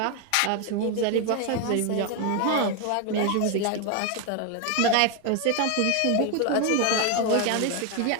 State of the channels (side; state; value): both; different; correlation 0.01